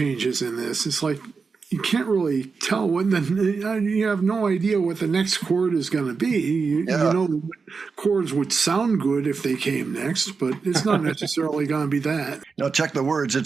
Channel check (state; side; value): quieter; left; 4.9 dB